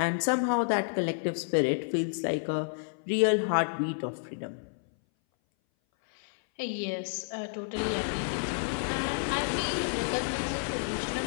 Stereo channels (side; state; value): right; silent; 58 dB below the other